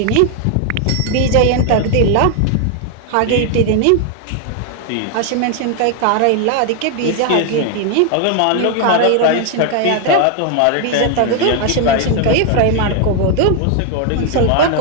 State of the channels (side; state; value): both; different; correlation 0.00